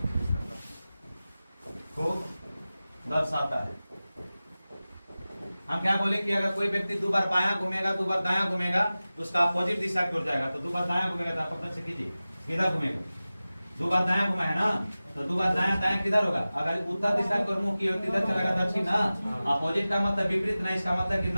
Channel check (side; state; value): both; inverted; correlation -0.96